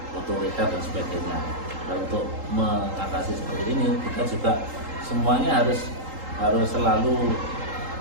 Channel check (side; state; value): left; late; 3.8 ms